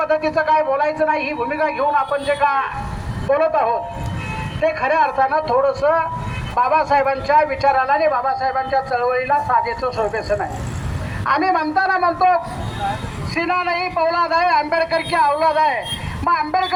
काय बोलायचं नाही, ही भूमिका घेऊन आपण जे का बोलत आहोत ते खऱ्या अर्थानं थोडंसं बाबासाहेबांच्या विचाराला आणि बाबासाहेबांच्या चळवळीला साजेचं शोभेचं नाही. आम्ही म्हणतो सीना नाही पौलाद आहे, आंबेडकर की औलाद आहे. मग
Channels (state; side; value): identical; both; correlation 1.00